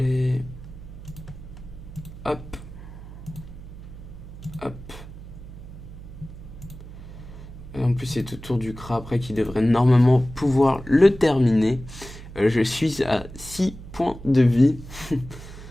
Hop. Hop. Et en plus, c'est autour du CRA après qui devrait normalement pouvoir le terminer. Je suis à 6 points de vie.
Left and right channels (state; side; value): noise; right; hum, 14 dB below the sound